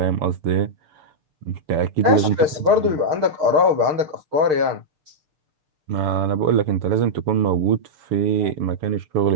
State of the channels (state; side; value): late; left; 6.5 ms